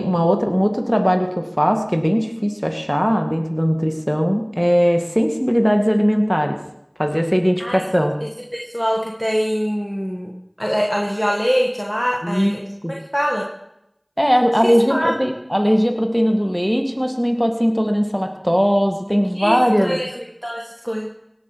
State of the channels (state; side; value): identical; both; correlation 1.00